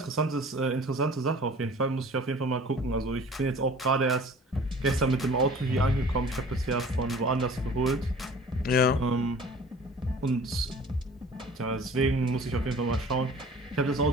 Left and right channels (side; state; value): both; normal; correlation 0.46